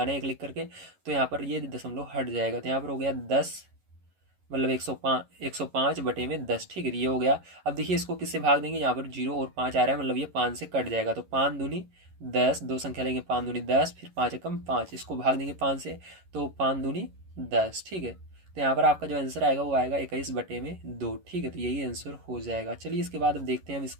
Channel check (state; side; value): late; left; 11 ms